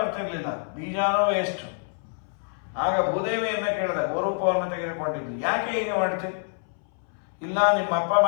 ಬೀಜನೂ ವೇಸ್ಟ್. ಆಗ ಭೂದೇವಿಯನ್ನ ಕೇಳಿದ, ಗೋರೂಪವನ್ನು ತೆಗೆದುಕೊಂಡಿದ್ದು, ಯಾಕೆ ಹೀಗೆ ಮಾಡ್ತೀವಿ? ಇಲ್ಲ, ನಿಮ್ಮಪ್ಪ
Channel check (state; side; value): silent; right; 61 dB below the other